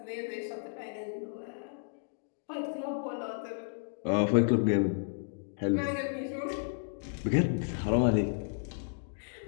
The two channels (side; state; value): right; silent; digital silence